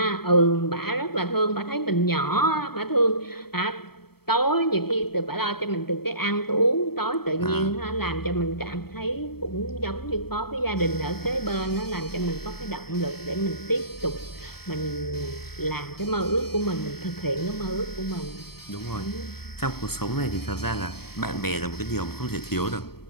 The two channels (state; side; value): late; right; 0.96 ms